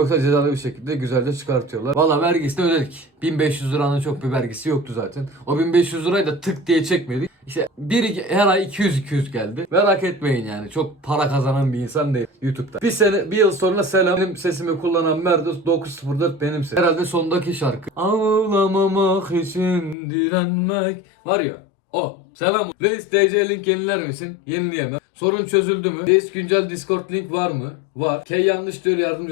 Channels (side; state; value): right; drops out; at 20.0 s